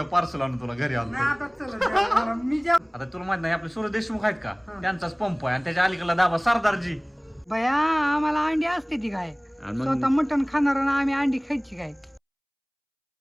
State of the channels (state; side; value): identical; both; correlation 1.00